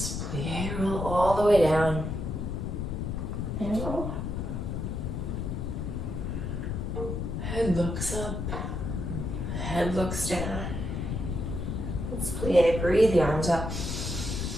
Plie, roll all the way down. And roll. Head looks up. Head looks down. Let's plie. Breathe the arms up.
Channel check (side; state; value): left; noise; rumble, 3 dB below the sound